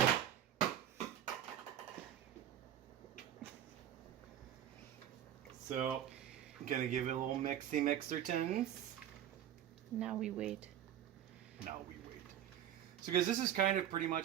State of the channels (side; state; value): left; quieter; 10.8 dB